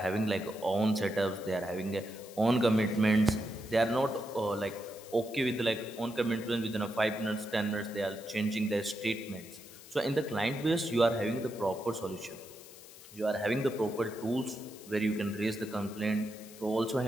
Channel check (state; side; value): noise; left; hiss, 18 dB below the sound